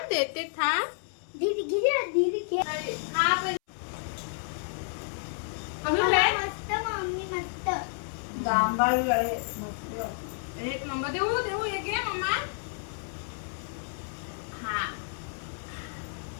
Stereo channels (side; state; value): right; silent; 58 dB below the other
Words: दीदी घे मस्त मम्मी मस्त जांभळी आहे मस्त। एक नंबर देऊ हे घे मम्मा। हा